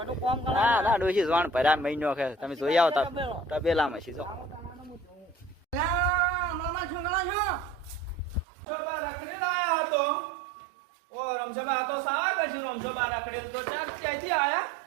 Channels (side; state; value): left; drops out; at 8.5 s